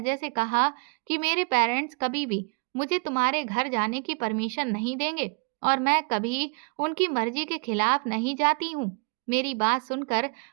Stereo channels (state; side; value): quieter; left; 37.3 dB